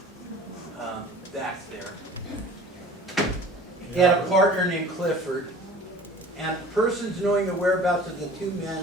back there. He had a partner named Clifford, and persons knowing the whereabouts of the two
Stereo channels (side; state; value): both; normal; correlation 0.45